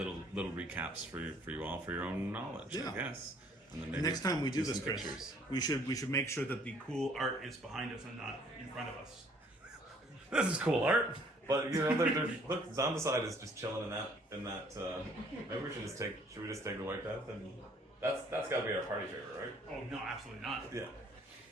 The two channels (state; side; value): normal; both; correlation 0.60